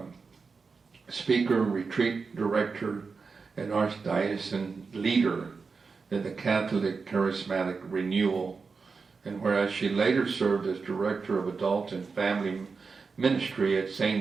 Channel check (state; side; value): quieter; left; 4.8 dB